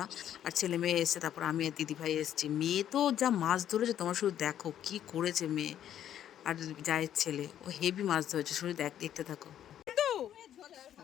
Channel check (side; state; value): right; quieter; 10.7 dB